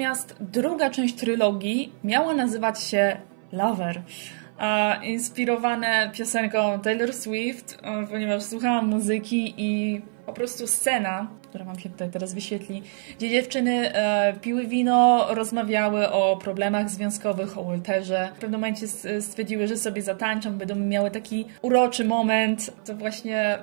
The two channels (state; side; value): silent; left; 57 dB below the other